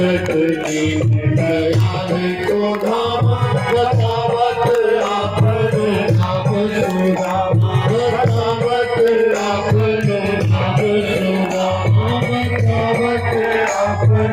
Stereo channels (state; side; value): noise; left; hum, 26 dB below the sound